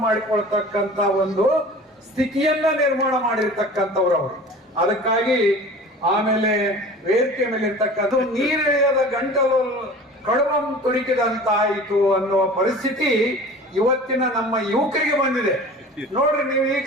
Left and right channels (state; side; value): normal; both; correlation 0.41